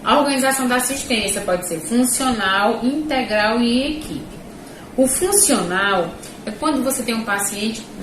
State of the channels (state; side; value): identical; both; correlation 1.00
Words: A organização da assistência pode ser funcional, integral e em equipe. O funcional é quando você tem um paciente,